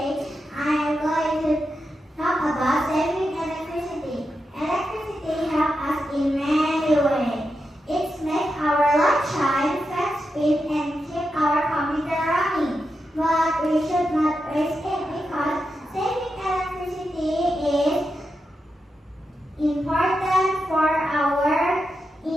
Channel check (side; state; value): both; normal; correlation 0.87